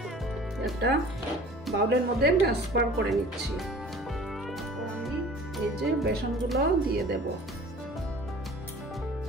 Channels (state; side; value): normal; both; correlation 0.45